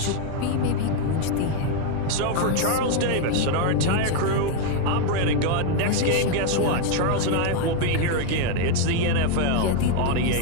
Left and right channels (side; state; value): both; different; correlation 0.01